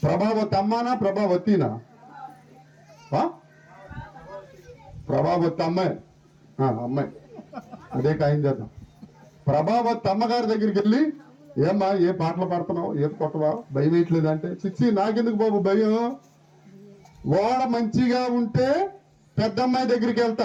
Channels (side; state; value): both; identical; correlation 1.00